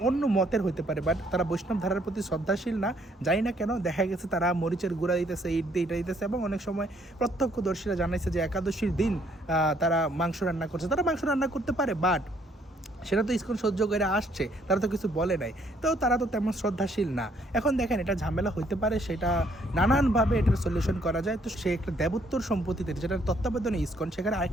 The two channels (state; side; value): normal; both; correlation 0.66